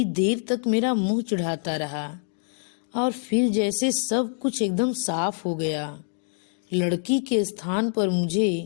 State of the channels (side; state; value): right; silent; 61 dB below the other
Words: देर तक मेरा मुंह चिढ़ाता रहा और फिर जैसे सब कुछ एकदम साफ हो गया। लड़की के स्थान पर